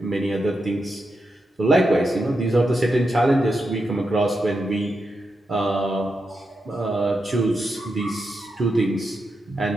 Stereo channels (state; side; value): normal; both; correlation 0.86